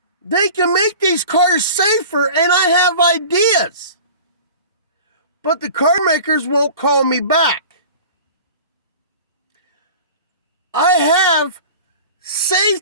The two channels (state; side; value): inverted; both; correlation -0.40